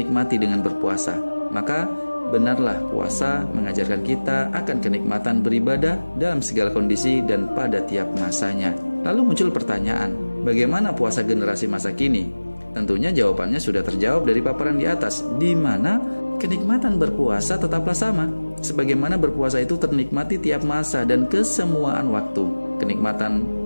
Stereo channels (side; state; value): both; inverted; correlation -1.00